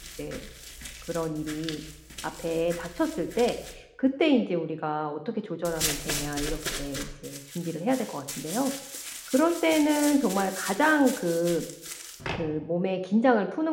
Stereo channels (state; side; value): identical; both; correlation 1.00